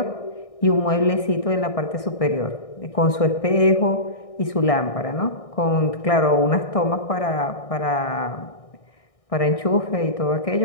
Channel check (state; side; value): late; right; 1.6 ms